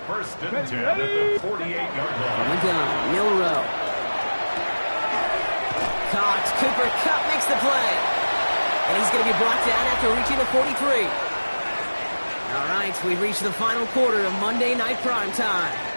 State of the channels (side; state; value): both; inverted; correlation -1.00